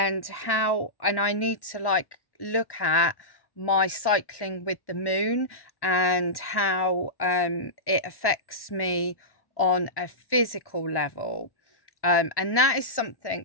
I need to like look at my cycling with the moon and how it affects me on a physical level. And that is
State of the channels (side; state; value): right; late; 1.1 ms